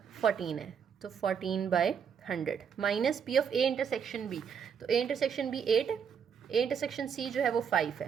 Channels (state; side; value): quieter; left; 7.2 dB